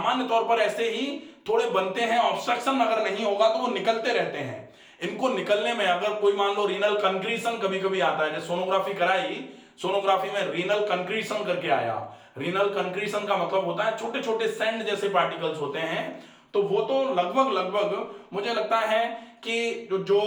तौर पर ऐसे ही थोड़े बनते हैं, ऑब्स्ट्रक्शन अगर नहीं होगा तो वो निकलते रहते हैं। इनको निकलने में अगर कोई मान लो रीनल कंक्रीशन कभी कभी आता है, जैसे सोनोग्राफी कराई, सोनोग्राफी में रीनल कंक्रीशन करके आया। रीनल कंक्रीशन का मतलब होता है छोटे छोटे सैंड जैसे पार्टिकल्स होते हैं, तो वो तो लगभग मुझे लगता है कि जो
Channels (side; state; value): both; identical; correlation 1.00